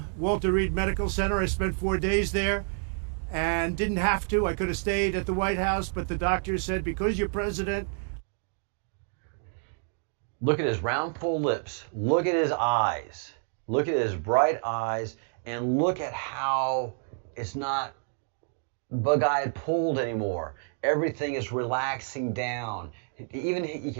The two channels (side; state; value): left; silent; 59 dB below the other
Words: Walter Reed Medical Center. I spent 4 days there and didn't have to. I could have stayed at the White House, but the doctor said, because you're president. Look at his round, full lips. Look at his eyes. Look at his bright eyes. And look at how it's not bug-eyed pulled anymore. Everything is relaxing down. Even you